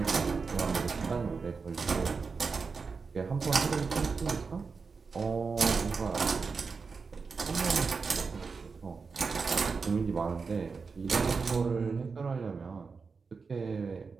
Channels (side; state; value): left; quieter; 4.9 dB